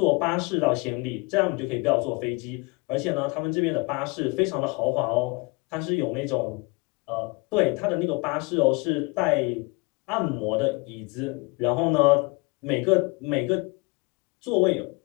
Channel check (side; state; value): right; quieter; 28.4 dB